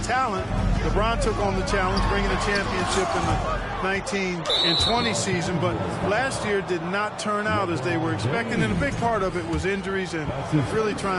talent. LeBron took on the challenge, bringing a championship in the 19 and 20 season, but last year did not turn out as they were expecting, and a big part of it was injuries and really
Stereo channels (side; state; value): both; identical; correlation 1.00